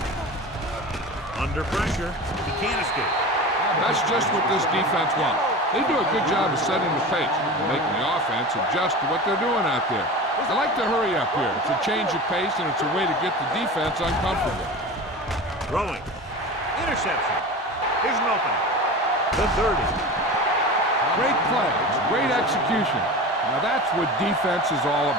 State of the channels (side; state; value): both; normal; correlation 0.31